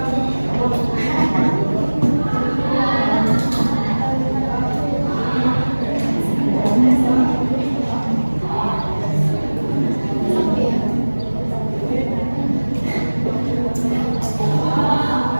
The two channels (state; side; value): inverted; both; correlation -1.00